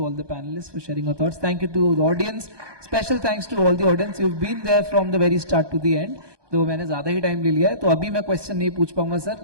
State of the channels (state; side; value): late; left; 1.2 ms